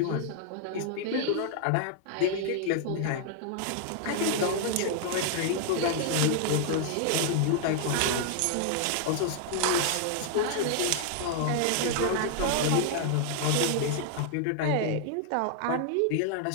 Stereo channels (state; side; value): different; both; correlation 0.00